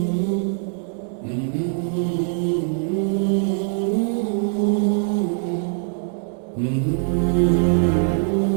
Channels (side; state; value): left; silent; digital silence